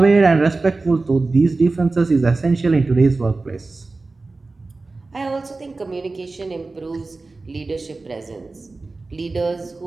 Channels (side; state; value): left; quieter; 3.5 dB